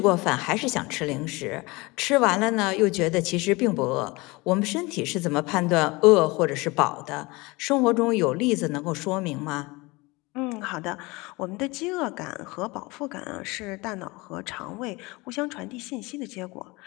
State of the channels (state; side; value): quieter; right; 23.9 dB